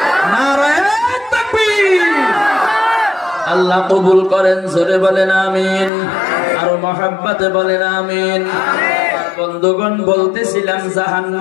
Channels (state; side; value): drops out; right; at 5.9 s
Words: নারায়ে তাকবীর। আল্লাহ কবুল করেন, জোরে বলেন আমিন। আরো মহব্বতে বলেন আমিন। বন্ধুগণ, বলতেছিলাম